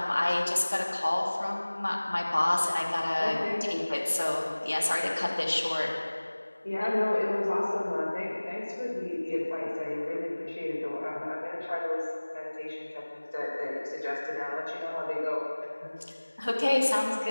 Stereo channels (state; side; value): inverted; both; correlation -1.00